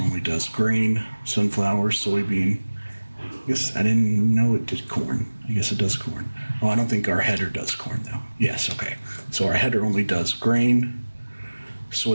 only does grain, sunflower, soybean. I guess I didn't know it did corn. I guess it does corn. Oh, I don't think our header does corn though. Yes, okay. So our header only does grain,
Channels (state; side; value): inverted; both; correlation -1.00